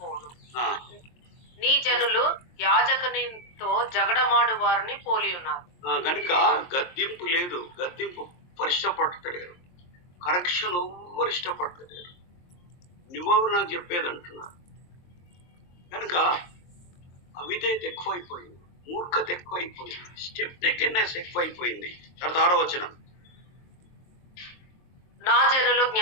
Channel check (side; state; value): right; late; 23 ms